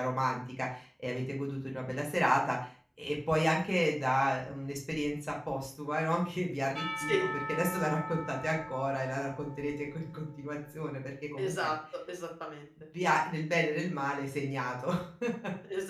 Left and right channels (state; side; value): identical; both; correlation 1.00